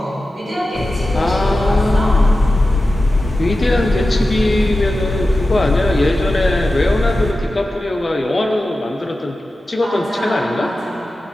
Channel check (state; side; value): normal; both; correlation 0.94